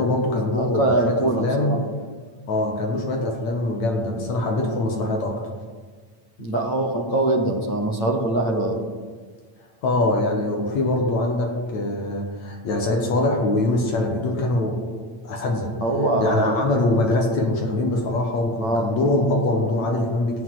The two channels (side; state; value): right; late; 8.9 ms